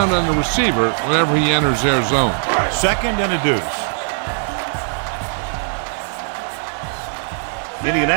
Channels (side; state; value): left; silent; 59 dB below the other